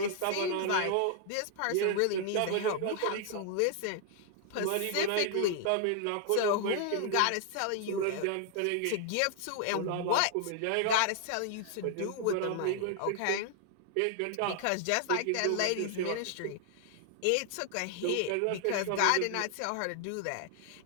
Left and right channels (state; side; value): different; both; correlation 0.00